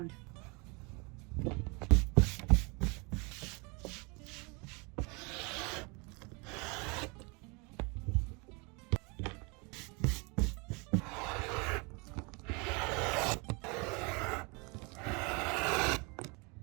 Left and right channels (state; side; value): quieter; left; 29.8 dB